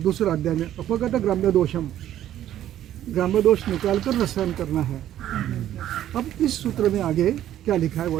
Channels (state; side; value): quieter; left; 12.0 dB